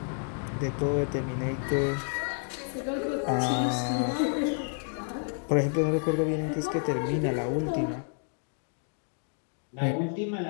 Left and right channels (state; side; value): silent; right; 58 dB below the other